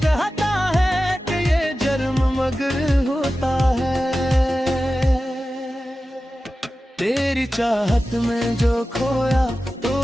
कहता है कि ये जर्म मगर होता है। तेरी चाहत में जो खोया तो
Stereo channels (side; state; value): both; normal; correlation 0.94